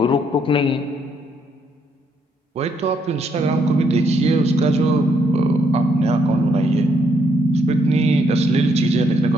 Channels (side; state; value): both; normal; correlation 0.73